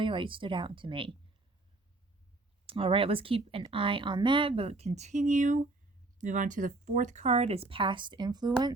like stood out to me. All right, let's keep an eye on that, but continue. Move on to the fourth card is past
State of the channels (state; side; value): quieter; left; 3.1 dB